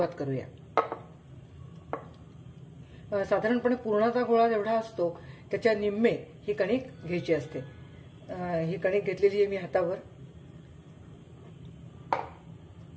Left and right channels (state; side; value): identical; both; correlation 1.00